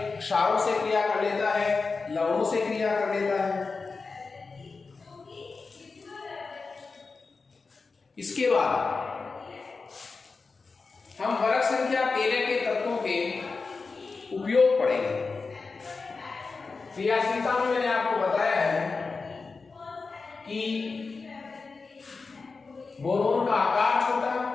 क्षारों से क्रिया कर लेता है, लवणों से क्रिया कर लेता है। इसके बाद हम वर्ग संख्या 13 के तत्वों के उपयोग पढ़ेंगे। क्रियाशीलता में मैंने आपको बताया है कि बोरोन का आकार छोटा,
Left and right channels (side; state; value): right; quieter; 4.3 dB